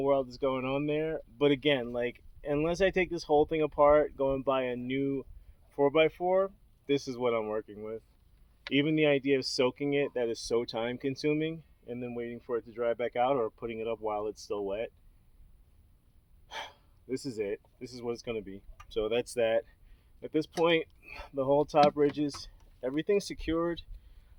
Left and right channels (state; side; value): identical; both; correlation 1.00